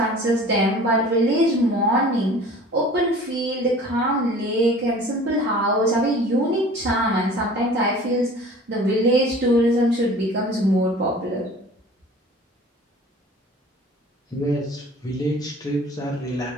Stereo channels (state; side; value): normal; both; correlation 0.45